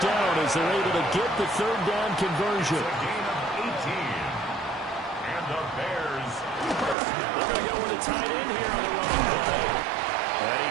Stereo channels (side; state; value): left; drops out; at 7.0 s